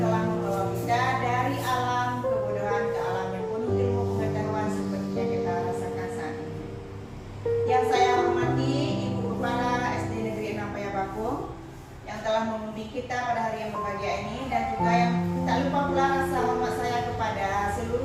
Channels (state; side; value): identical; both; correlation 1.00